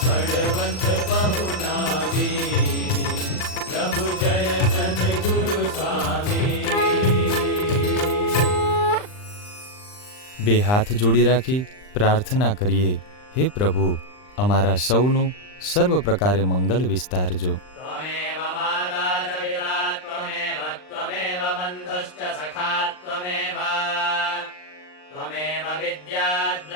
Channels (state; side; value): late; right; 39 ms